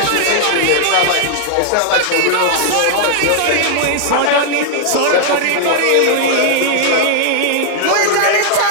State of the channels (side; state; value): both; different; correlation 0.00